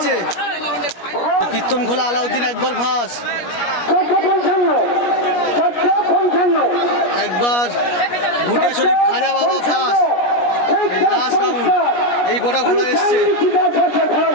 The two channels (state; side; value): late; right; 17 ms